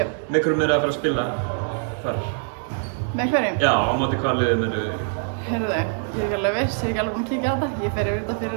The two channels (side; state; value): left; silent; digital silence